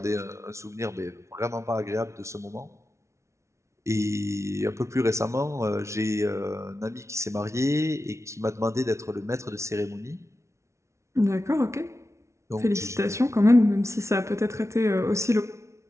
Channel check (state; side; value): late; left; 0.13 ms